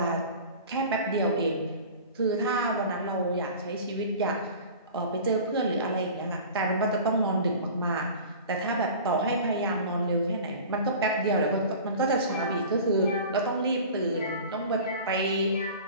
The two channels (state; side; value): inverted; both; correlation -0.39